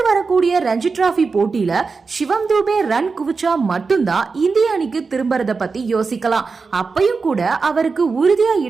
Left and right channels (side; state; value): left; quieter; 4.6 dB